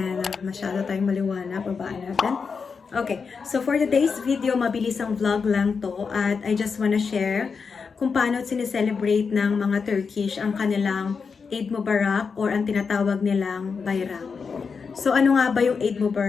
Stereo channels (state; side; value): quieter; right; 5.4 dB